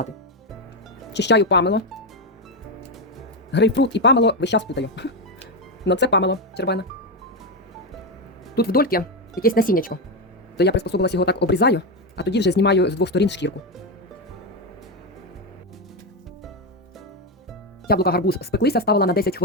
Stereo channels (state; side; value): normal; both; correlation 0.09